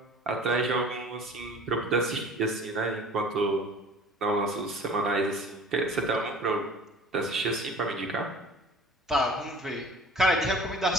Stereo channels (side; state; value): both; normal; correlation 0.45